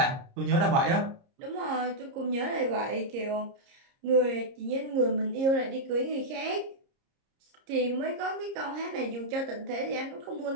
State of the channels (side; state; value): left; late; 30 ms